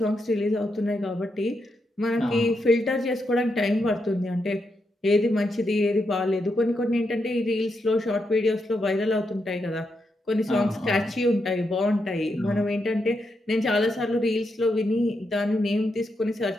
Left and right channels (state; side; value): normal; both; correlation 0.83